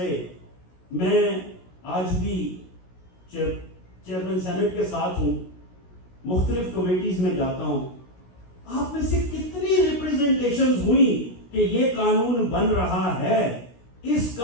میں آج بھی چیئرمین سینٹ کے ساتھ ہوں, مختلف کمیٹیز میں جاتا ہوں, آپ میں سے کتنی ریپریزنٹیشنز ہوئی کہ یہ قانون بن رہا ہے, اس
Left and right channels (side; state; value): right; late; 16 ms